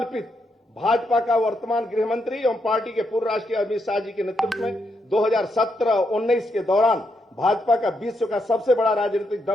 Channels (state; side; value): normal; both; correlation 0.80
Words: भाजपा का वर्तमान गृह मंत्री एवं पार्टी के पूर्व राष्ट्रीय अमित शाह जी के नेतृत्व में 2017-19 के दौरान भाजपा का विश्व का सबसे बड़ा राजनीतिक